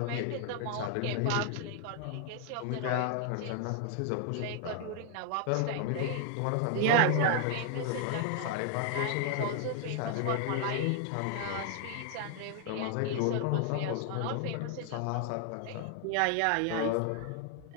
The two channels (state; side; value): different; both; correlation 0.00